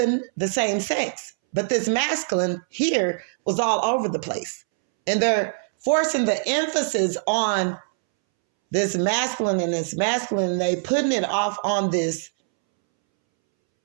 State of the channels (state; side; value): silent; left; 63 dB below the other